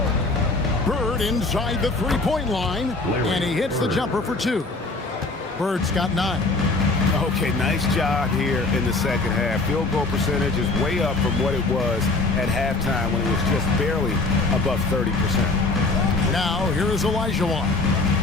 Bird inside the three-point line, and he hits the jumper for 2. Bird's got 9. Okay, nice job here in the second half. Field goal percentage is way up from what it was at halftime when it was just barely above 30%. Now, here is Olajuwon.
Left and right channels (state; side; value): quieter; right; 3.4 dB